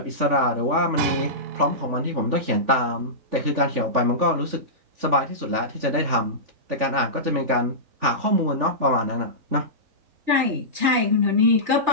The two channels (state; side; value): late; left; 3.5 ms